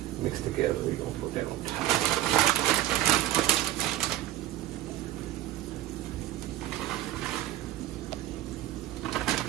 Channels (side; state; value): left; quieter; 14.4 dB